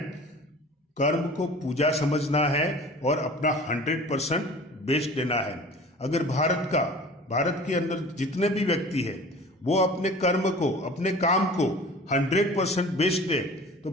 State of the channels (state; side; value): normal; both; correlation 0.42